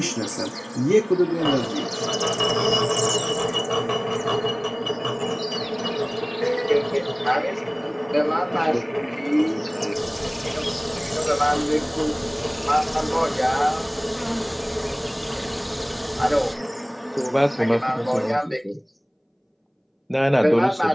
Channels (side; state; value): both; identical; correlation 1.00